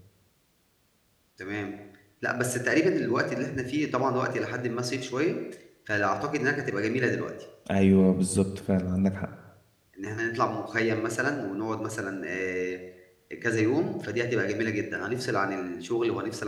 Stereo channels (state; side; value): identical; both; correlation 1.00